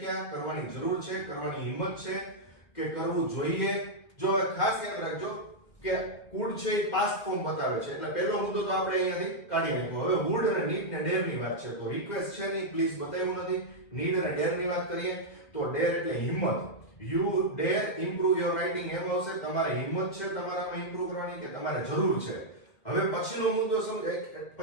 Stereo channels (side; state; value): right; late; 2.1 ms